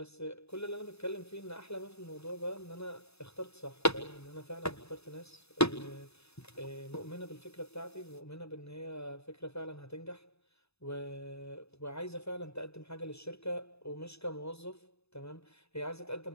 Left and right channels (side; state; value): right; late; 0.79 ms